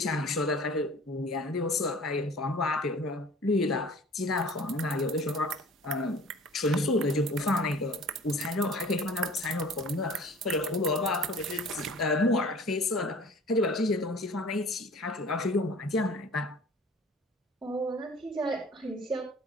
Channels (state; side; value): normal; both; correlation 0.46